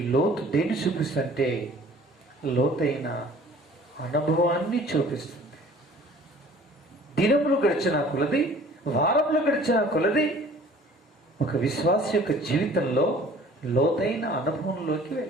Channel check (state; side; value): normal; both; correlation 0.50